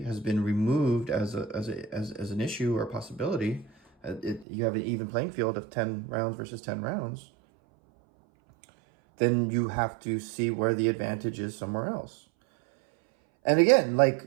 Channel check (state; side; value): drops out; left; at 4.5 s